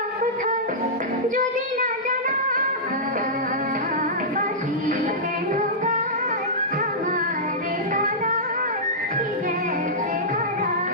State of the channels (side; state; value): both; normal; correlation -0.13